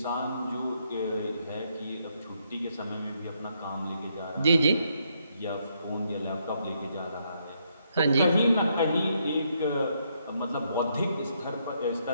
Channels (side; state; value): both; inverted; correlation -0.75